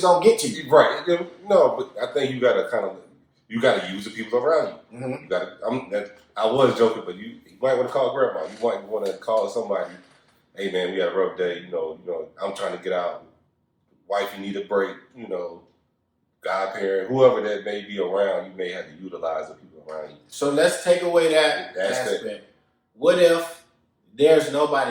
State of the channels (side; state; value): both; identical; correlation 1.00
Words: get to you. Right. No, but I think you gotta use the people around you. Mm-hmm. You gotta. I was joking, but you might want to call grandma. You might want to call somebody. Hey man, we had a rough day. You know, I'm trying to get out. Wife, you need a break. You know, godparent, whoever that may be around, you may have to utilize the people around you. So let's take away that aspect. What if there's